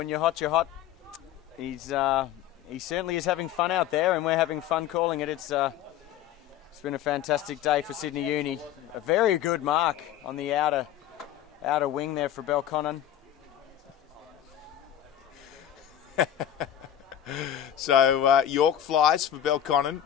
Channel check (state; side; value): quieter; right; 11.0 dB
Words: you're hot, you're hot. He certainly is having fun out there, and we're having fun calling it. It's been a fantastic day for Sydney Uni. A very good mark on the outer wing there for Belconnen. So York flies for Belconnen.